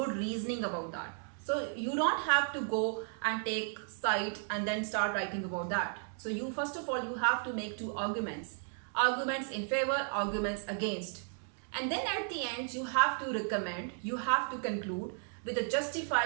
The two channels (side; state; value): left; silent; 55 dB below the other